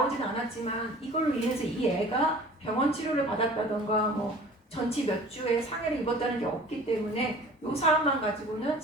않았지만 이걸로 인해서 이 애가 병원 치료를 받았다던가 뭐 전치 몇 주에 상해를 입었다는 게 없기 때문에 이 사안만 가지고는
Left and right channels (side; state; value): both; normal; correlation 0.46